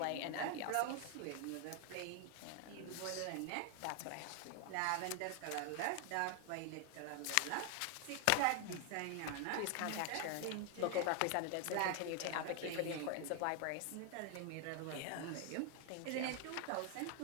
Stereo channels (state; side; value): different; both; correlation 0.00